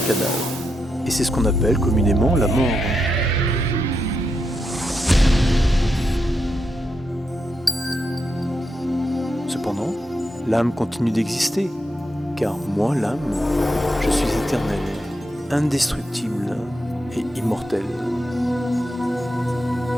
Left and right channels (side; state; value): both; normal; correlation 0.84